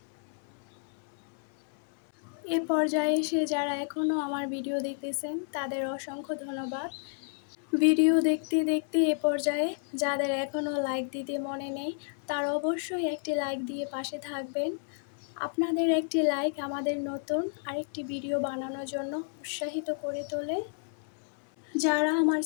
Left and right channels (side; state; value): right; silent; 57 dB below the other